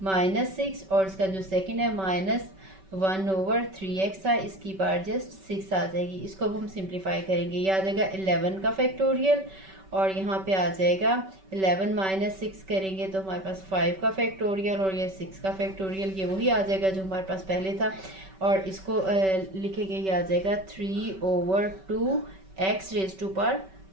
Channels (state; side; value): late; left; 5.2 ms